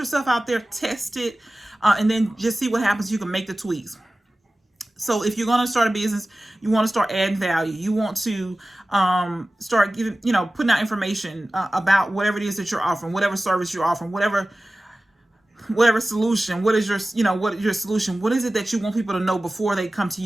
out there, test it, and then just see what happens. You can make the tweaks. So if you're going to start a business, you want to start adding value. You want to start giving, putting out information about whatever it is that you're offering, whatever service you're offering, whatever solution. What is your solution? What is it that you want people to know before they come to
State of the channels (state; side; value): normal; both; correlation 0.96